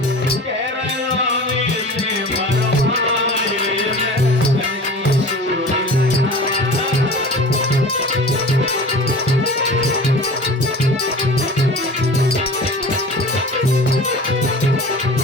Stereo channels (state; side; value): normal; both; correlation 0.38